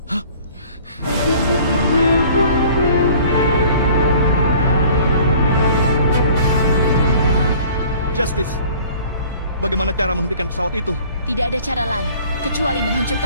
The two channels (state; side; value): inverted; both; correlation -0.50